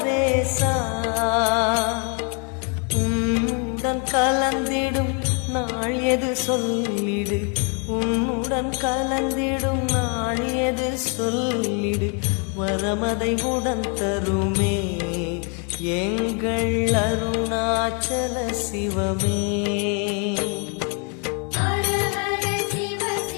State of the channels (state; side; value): quieter; right; 37.6 dB